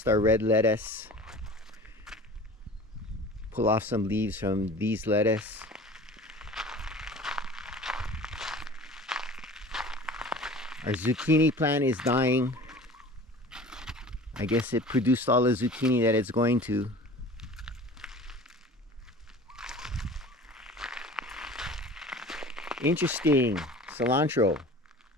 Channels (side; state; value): both; normal; correlation 0.41